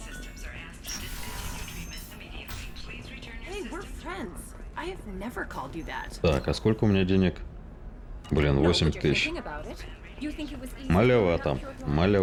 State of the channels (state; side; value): identical; both; correlation 1.00